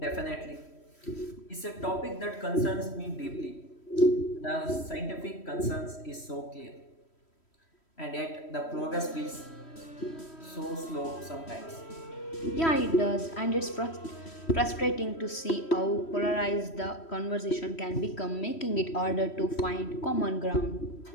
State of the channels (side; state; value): right; late; 3.1 ms